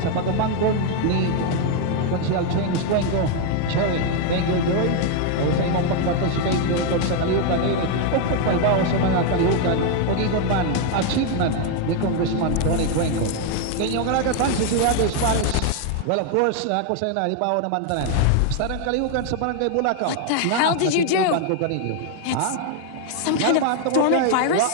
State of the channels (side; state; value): both; different; correlation 0.01